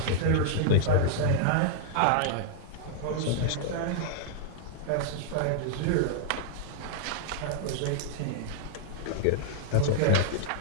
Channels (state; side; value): different; both; correlation -0.01